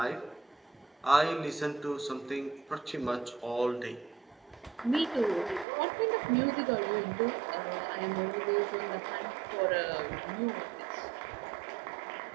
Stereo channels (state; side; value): drops out; left; at 5.7 s